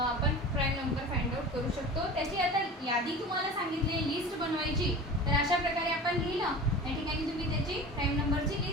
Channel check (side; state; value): both; normal; correlation 0.36